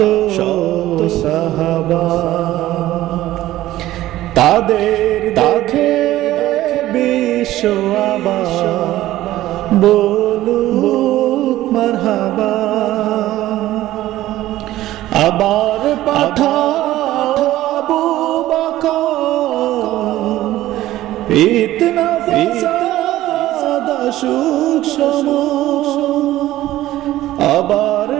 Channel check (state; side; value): quieter; left; 15.0 dB